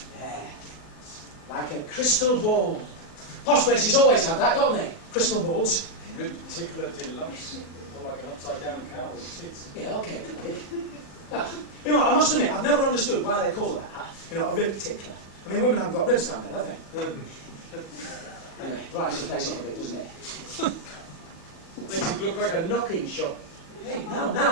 There. Like a crystal ball. Posh places always have that, don't they? Crystal balls. Rib tickler deluxe. More like an upside-down cow with tits. Yeah, okay, Dick. You know, I must admit, I've never understood why they call that, you know, a rib tickler. I mean, women haven't got ribs down there, have they? Anyway, brightens the place up a bit, doesn't it? Makes it look like a knocking shop. Hey,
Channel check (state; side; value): late; right; 40 ms